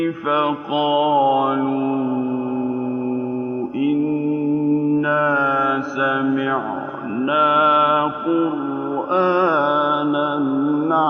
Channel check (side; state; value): both; identical; correlation 1.00